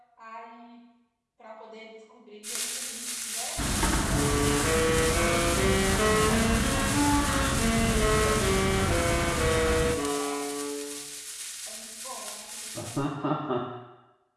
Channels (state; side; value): identical; both; correlation 1.00